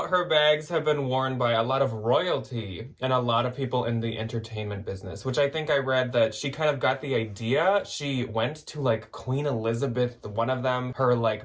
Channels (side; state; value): both; identical; correlation 1.00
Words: her bags have been worn by a lot of royalty and a lot of people in the entertainment business, which I think I read that she kind of got the idea. She went to like Queen Elizabeth, one of them, her